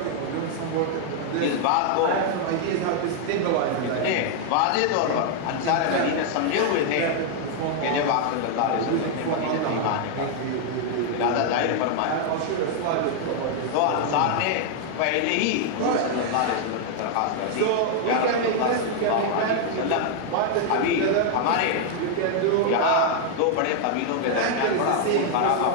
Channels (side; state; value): both; different; correlation 0.00